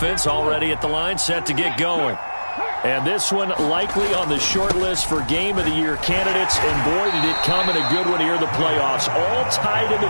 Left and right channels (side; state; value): both; inverted; correlation -1.00